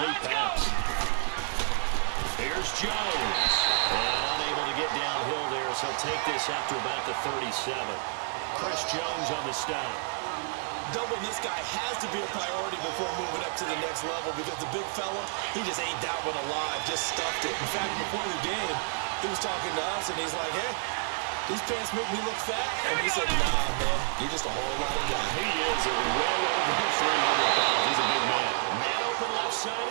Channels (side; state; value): left; silent; 58 dB below the other